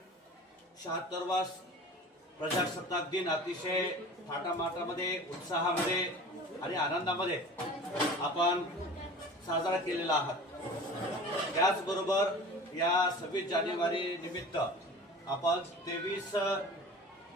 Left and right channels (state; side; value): normal; both; correlation 0.39